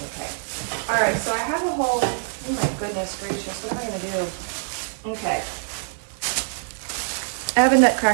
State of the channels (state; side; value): silent; left; 62 dB below the other